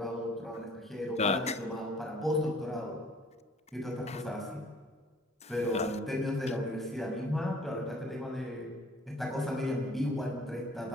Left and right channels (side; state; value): both; normal; correlation 0.54